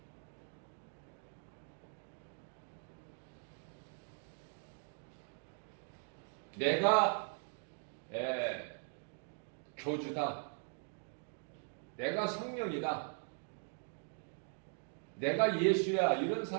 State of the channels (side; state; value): left; silent; 51 dB below the other